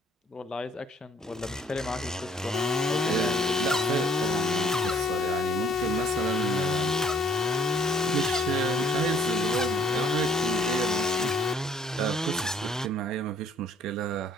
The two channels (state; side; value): normal; both; correlation 0.62